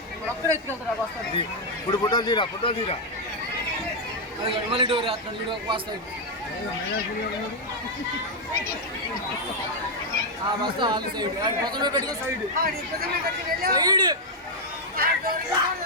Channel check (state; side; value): normal; both; correlation -0.01